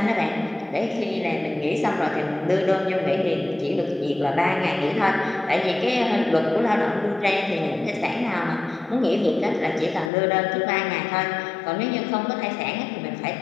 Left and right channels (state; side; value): drops out; right; at 10.1 s